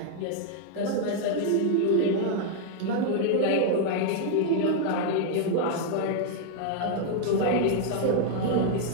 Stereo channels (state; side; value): different; both; correlation 0.00